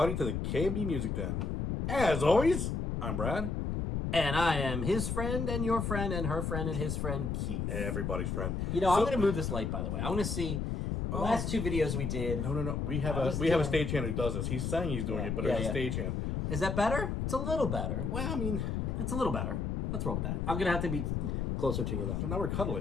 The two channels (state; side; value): noise; left; rumble, 1 dB below the sound